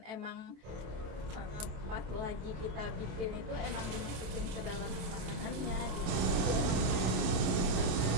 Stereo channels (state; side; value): late; left; 27 ms